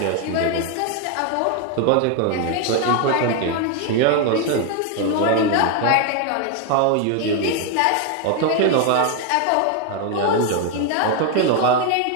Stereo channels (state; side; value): different; both; correlation 0.01